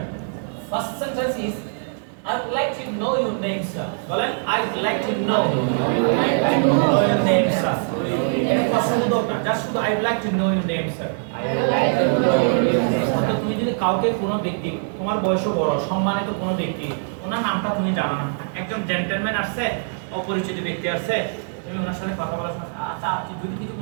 first sentence is I would like to know your name, sir. বলেন I would like to know your name, sir. এটা প্রশ্নবোধক না, জাস্ট শুধু I would like to know your name, sir. অর্থাৎ তুমি যদি কাউকে কোনো ব্যক্তি, তোমার বয়সও বড়, সম্মানিত কোনো ব্যক্তি, ওনার নামটা তুমি জানো না, একজন জেন্টলম্যান আসছে, অপরিচিত ব্যক্তি আসছে, তুমি ওনার সাথে কথা বলার সময় আচ্ছা আপনি যদি কিছু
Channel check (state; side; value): silent; left; digital silence